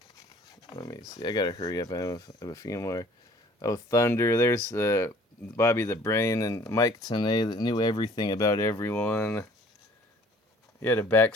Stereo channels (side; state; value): both; normal; correlation 0.54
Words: Let me see. I gotta hurry up. I have a few more. Oh, Thunder. There's Bobby the Brain and Mike Tenay that knew everything about everyone. He had a